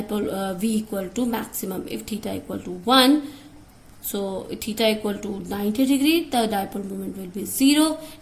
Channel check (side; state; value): both; identical; correlation 1.00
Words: V equal to maximum. If theta equal to 1, so if theta equal to 90 degree, the dipole moment will be 0.